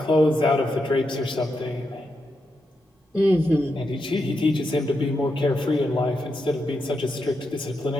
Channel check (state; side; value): normal; both; correlation 0.85